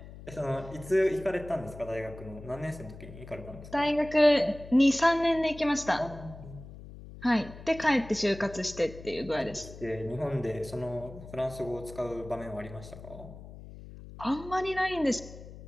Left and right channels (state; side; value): noise; left; hum, 15 dB below the sound